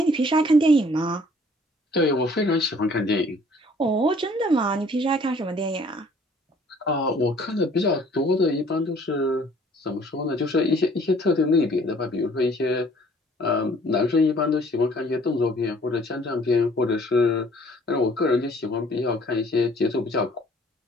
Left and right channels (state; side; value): normal; both; correlation 0.57